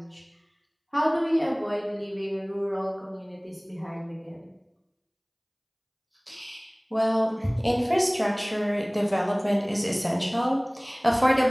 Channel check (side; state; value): both; identical; correlation 1.00